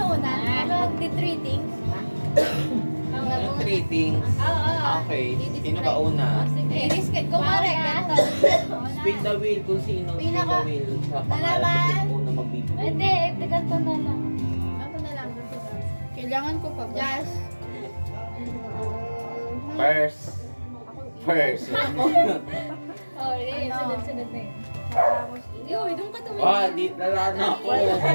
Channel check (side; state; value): both; inverted; correlation -1.00